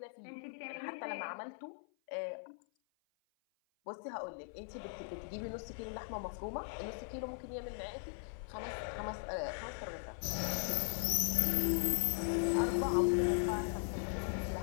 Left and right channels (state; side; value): silent; right; 52 dB below the other